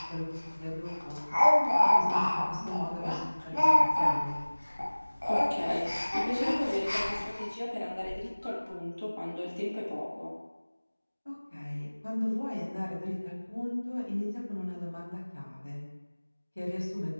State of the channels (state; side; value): inverted; both; correlation -1.00